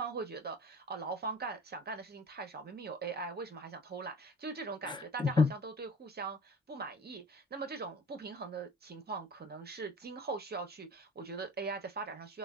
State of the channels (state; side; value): normal; both; correlation 0.42